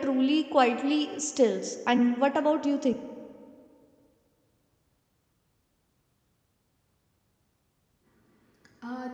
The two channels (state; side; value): identical; both; correlation 1.00